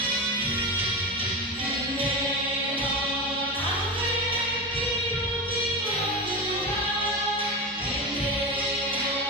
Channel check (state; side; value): normal; both; correlation 0.21